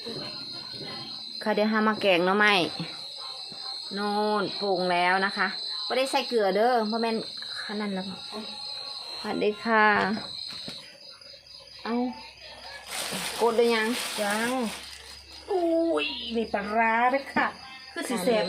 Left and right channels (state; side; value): identical; both; correlation 1.00